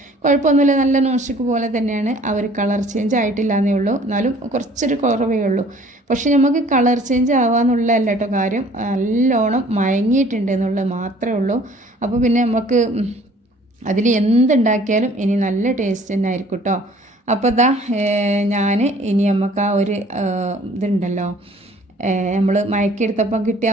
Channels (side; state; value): both; normal; correlation 0.54